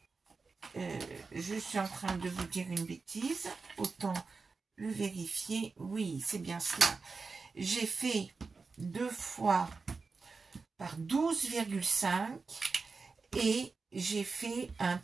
Je suis en train de vous dire une bêtise. Autant le vérifier. Oui, c'est bien cela. J'ai fait 2 fois par 12,5 et j'ai fait un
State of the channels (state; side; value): quieter; left; 4.4 dB